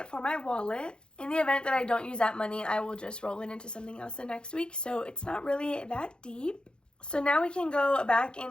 for my wallet. In the event that I don't use that money, I will just roll it into something else the next week. So it's not really that deep. So now we can go back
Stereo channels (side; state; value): right; late; 0.050 ms